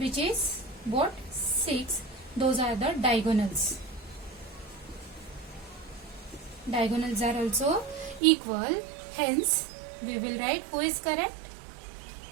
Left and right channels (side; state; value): left; drops out; at 8.2 s